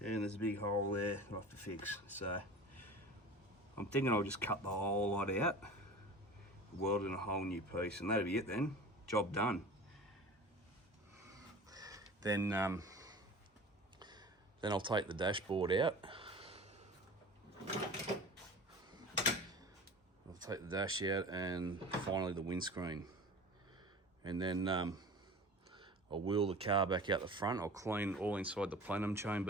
a big hole there I have to fix. So I'm thinking I'll just cut the whole lot out, weld in a whole new piece, and that'll be it then. Job done. Then I'll take the dashboard out. I'll take the dash out and finally the windscreen. And then I'll wheel the car back out the front. I'll clean all inside the plenum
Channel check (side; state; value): both; normal; correlation 0.38